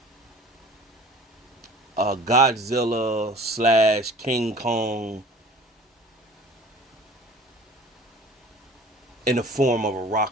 Godzilla slash King Kong in the form of a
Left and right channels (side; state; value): both; normal; correlation 0.46